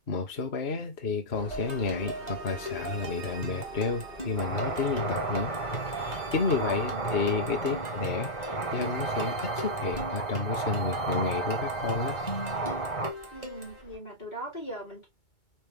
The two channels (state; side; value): late; right; 2.2 ms